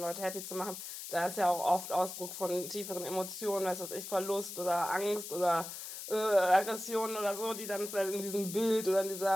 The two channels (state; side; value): noise; left; hiss, 9 dB below the sound